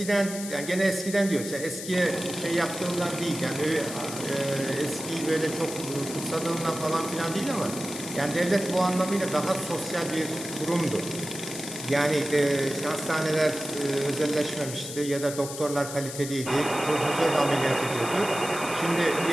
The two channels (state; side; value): noise; left; hiss, 9 dB below the sound